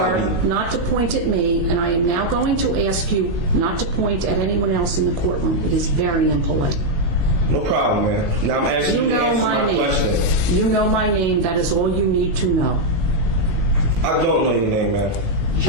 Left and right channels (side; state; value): left; late; 19 ms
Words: Not to point at me, and I am now going to ask you not to point at anyone else in the courtroom. It is very impolite. No problem, man. Now I'm asking you to answer my question. You know my name. That is all you need to know. I don't know your name, man.